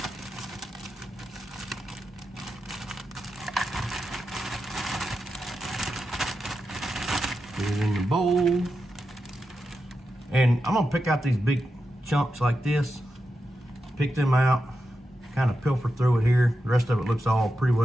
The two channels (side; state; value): both; normal; correlation 0.89